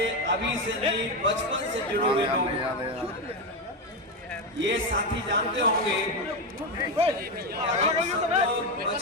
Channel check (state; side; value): normal; both; correlation 0.12